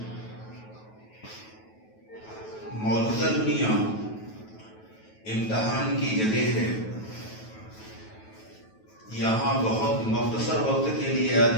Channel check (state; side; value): late; right; 9.2 ms